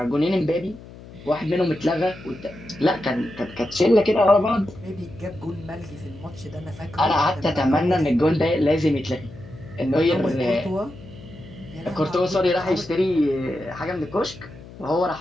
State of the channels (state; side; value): noise; left; hum, 17 dB below the sound